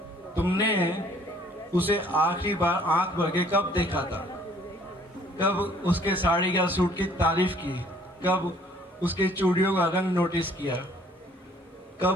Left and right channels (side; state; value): both; normal; correlation 0.59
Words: तुमने उसे आखिरी बार आंख भर के कब देखा था? कब उसके साड़ी या सूट की तारीफ की? कब उसके चूड़ियों का रंग नोटिस किया?